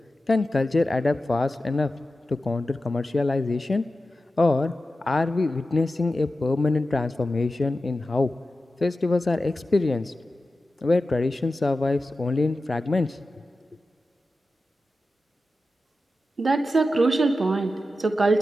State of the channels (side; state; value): both; normal; correlation 0.93